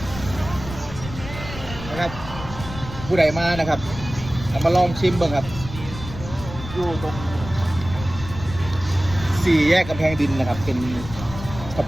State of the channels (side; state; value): left; noise; rumble, 11 dB below the sound